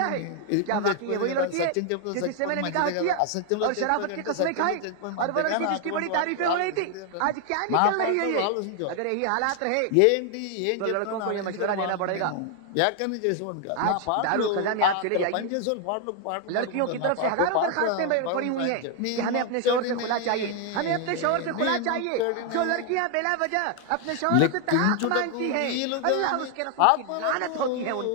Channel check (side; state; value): both; different; correlation 0.00